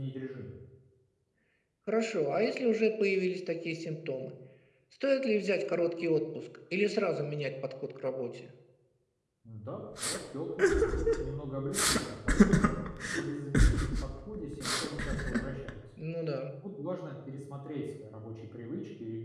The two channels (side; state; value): both; identical; correlation 1.00